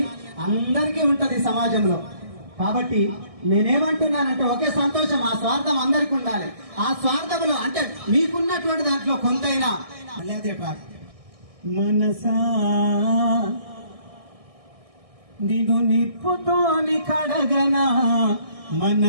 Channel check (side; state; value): left; late; 1.6 ms